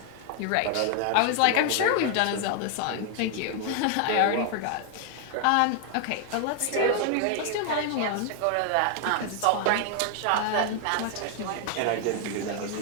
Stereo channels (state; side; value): different; both; correlation 0.00